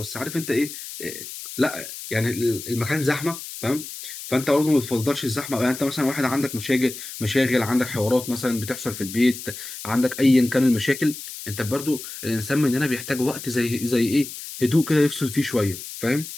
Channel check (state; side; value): noise; left; hiss, 11 dB below the sound